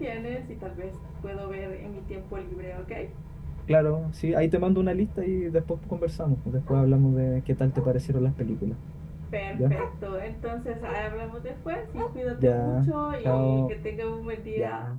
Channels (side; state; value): both; identical; correlation 1.00